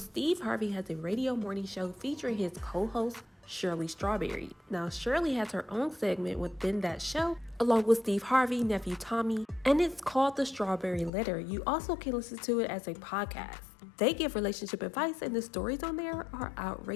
Harvey has a radio morning show featuring his co-host, Shirley Strawberry. Now, Shirley has her own segment within that show, along with Steve Harvey, nephew Tommy, and it's called The Strawberry Letter. You also can listen to it as a podcast. They give relationship advice, and the stories on there are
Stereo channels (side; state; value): right; drops out; at 11.1 s